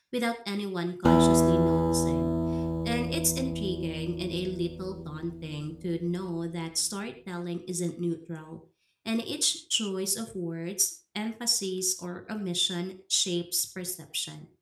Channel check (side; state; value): both; identical; correlation 1.00